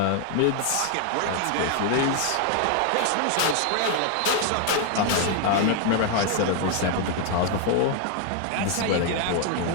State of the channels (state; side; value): different; both; correlation 0.00